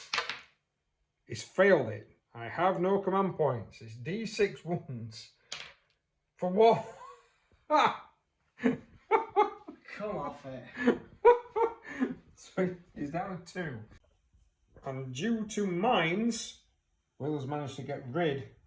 He's failed it. I have no command points. It's D6 wounds. For what? Come off it. So he's down to 2. And due to mines, Will has managed to get rid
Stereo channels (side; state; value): both; identical; correlation 1.00